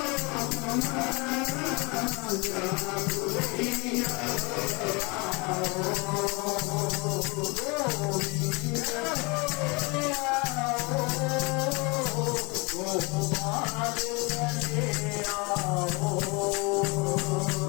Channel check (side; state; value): right; quieter; 28.3 dB